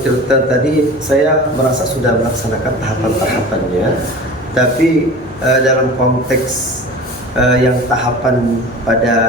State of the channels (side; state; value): both; normal; correlation 0.37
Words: tirta tadi, saya merasa sudah melaksanakan tahapan-tahapannya, tapi dalam konteks yang tahapan